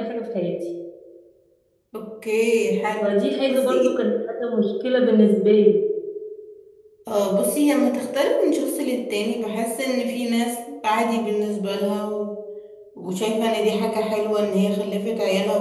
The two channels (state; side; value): identical; both; correlation 1.00